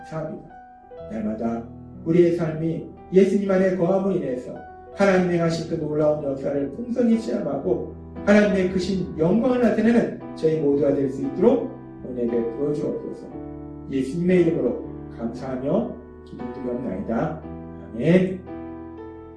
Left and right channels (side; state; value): both; identical; correlation 1.00